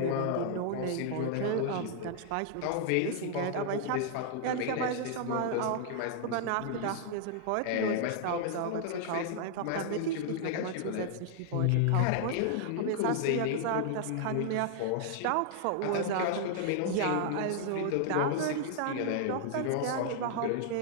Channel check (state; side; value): different; both; correlation -0.01